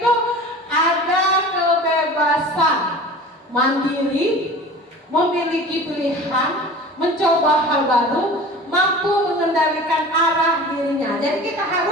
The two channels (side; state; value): both; normal; correlation 0.39